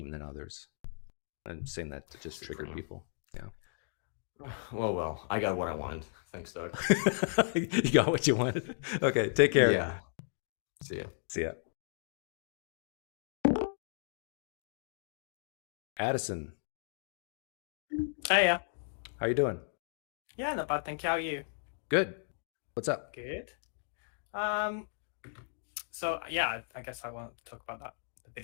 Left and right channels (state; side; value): silent; right; digital silence